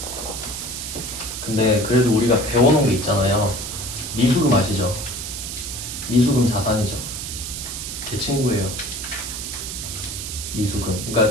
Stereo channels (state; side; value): noise; right; hiss, 6 dB below the sound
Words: 근데 그래도 우리가 배워놓은 게 있잖아요. 미수금 아시죠? 미수금 자산이죠. 제 친구예요. 미수금.